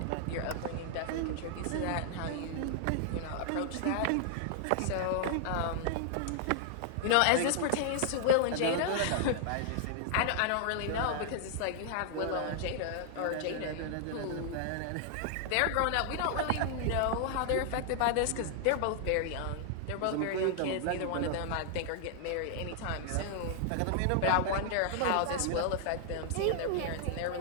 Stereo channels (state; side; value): different; both; correlation -0.01